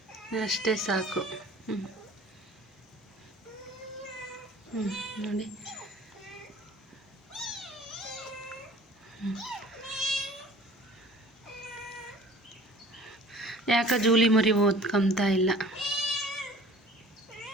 ಅಷ್ಟೇ ಸಾಕು. ನೋಡಿ. ಯಾಕೆ ಜೂಲಿ ಮರಿ ಓದ್ಕೊಂತ ಇಲ್ಲ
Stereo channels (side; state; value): both; normal; correlation 0.47